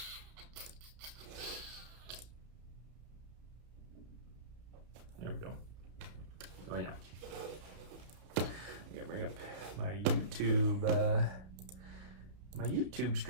we go. Oh yeah. I gotta bring up my YouTube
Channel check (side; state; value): left; late; 32 ms